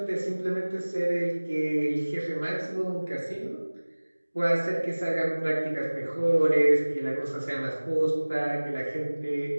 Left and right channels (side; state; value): both; inverted; correlation -1.00